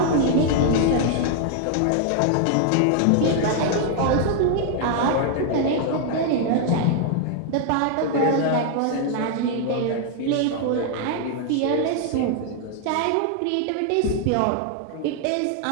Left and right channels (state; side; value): different; both; correlation 0.00